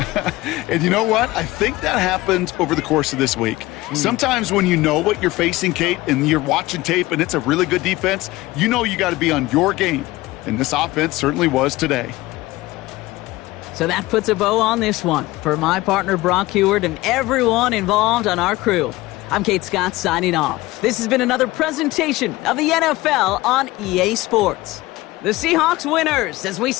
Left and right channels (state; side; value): quieter; right; 19.2 dB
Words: And you know what? I think that happened over the course of this week. Sometimes when you know what you're facing, Kate, and you're watching tape and it's a really good defense, you know you got to be on your game. And this offense certainly was today. So that puts a bow on this one. For my partner, Brock Heward, and everyone involved on our crew, I'm Kate Scott signing off. This has been another presentation of the NFL on EA Sports. The Seahawks winners as we